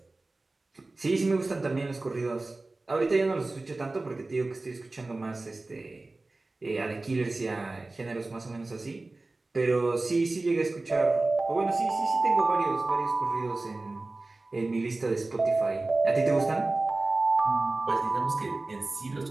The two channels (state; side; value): quieter; left; 3.2 dB